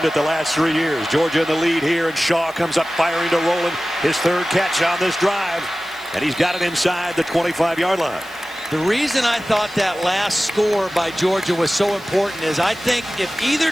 it the last 3 years. Georgia in the lead here, and Shaw comes up firing to Rowland. His 3rd catch on this drive, and he's got it inside the 25-yard line. The reason I thought that last score by Georgia was so important is I think if either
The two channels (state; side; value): noise; right; hiss, 24 dB below the sound